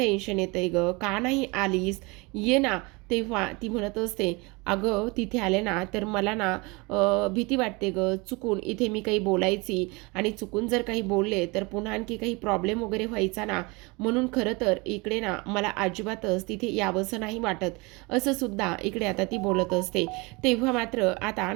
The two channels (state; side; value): quieter; left; 26.5 dB